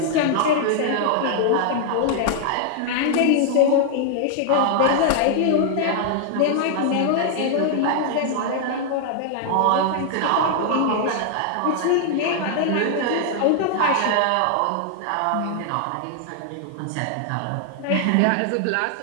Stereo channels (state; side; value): different; both; correlation 0.00